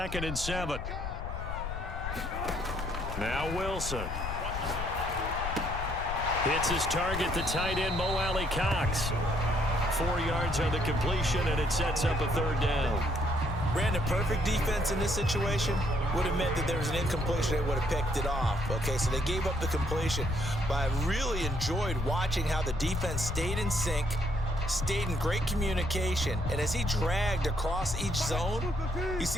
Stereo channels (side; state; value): left; noise; rumble, 5 dB below the sound